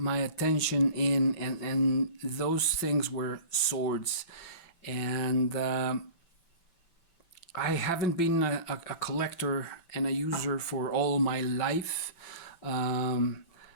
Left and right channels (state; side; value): late; right; 5.9 ms